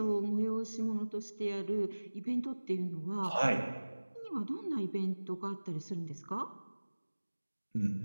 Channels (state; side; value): inverted; both; correlation -1.00